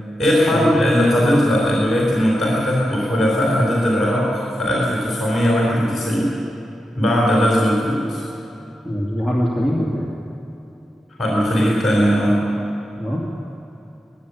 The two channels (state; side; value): normal; both; correlation 0.88